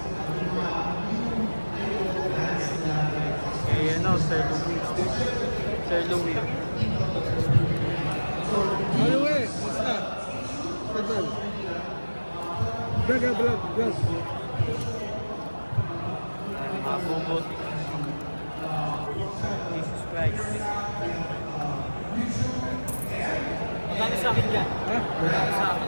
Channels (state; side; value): inverted; both; correlation -1.00